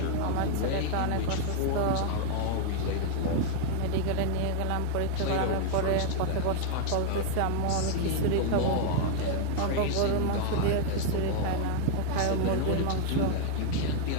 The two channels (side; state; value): both; different; correlation 0.00